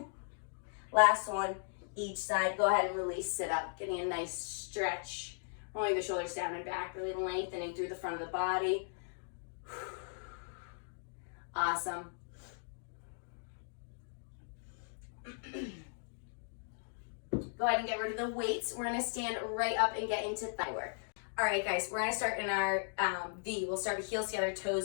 Last one. Each side. Go ahead and release. Sit up. Getting a nice stretch. Rolling the shoulders down and back. Really lengthening through the front of the body. Awesome. Go ahead and get rid of the weights. We're gonna stand right up and get into thigh work. All right, guys, we're gonna start in our V. We'll start with heels together,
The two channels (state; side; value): silent; right; digital silence